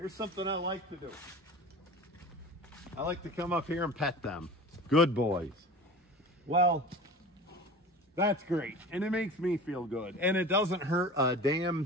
something I like to do. I like to come up here and pet them. Good boys. Well, that's great. And it makes me feel good. And it doesn't hurt a damn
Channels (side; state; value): both; normal; correlation 0.36